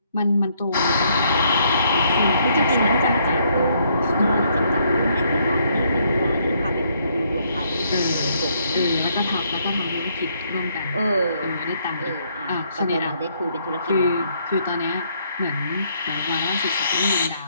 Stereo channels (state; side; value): inverted; both; correlation -0.70